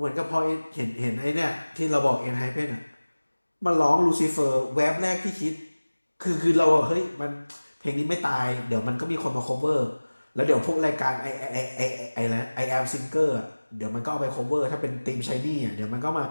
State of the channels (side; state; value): both; inverted; correlation -1.00